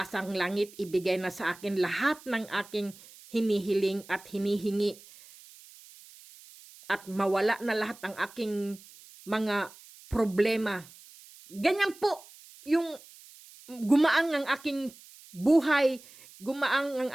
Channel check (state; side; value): noise; right; hiss, 21 dB below the sound